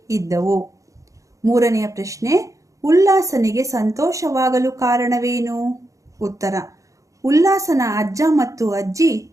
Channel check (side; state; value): left; late; 0.16 ms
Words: ಇದ್ದವು. 3ನೇ ಪ್ರಶ್ನೆ, ಉಲ್ಲಾಸನಿಗೆ ಸಂತೋಷವಾಗಲು ಕಾರಣವೇನು? ಉತ್ತರ, ಉಲ್ಲಾಸನ ಅಜ್ಜ ಮತ್ತು ಅಜ್ಜಿ